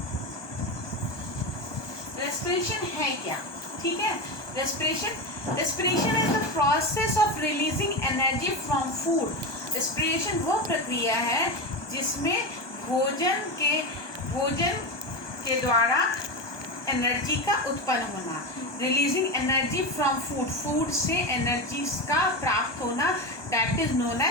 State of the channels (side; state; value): right; late; 1.2 ms